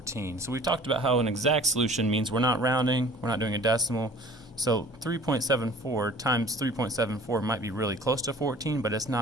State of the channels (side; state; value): both; normal; correlation 0.48